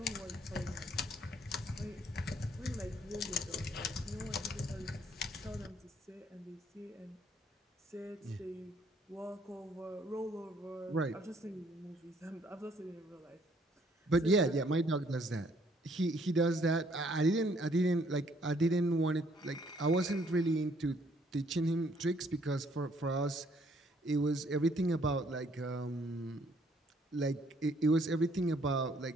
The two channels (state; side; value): normal; both; correlation 0.65